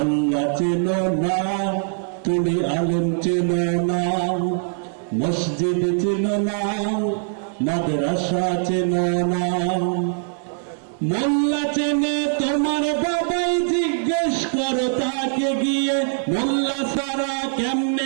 চেনো না তুমি, আলেম চেনো না, মসজিদ চেনো না, মাদ্রাসা চেনো না। মোল্লা চেনে তোমার বাবাই, জিজ্ঞেস করো তাকে গিয়ে। মোল্লা সারা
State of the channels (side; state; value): left; silent; digital silence